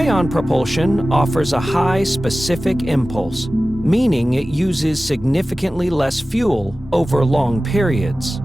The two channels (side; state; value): both; normal; correlation 0.96